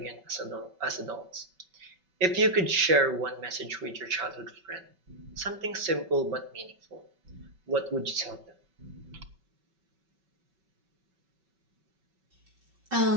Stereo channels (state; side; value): late; left; 5.3 ms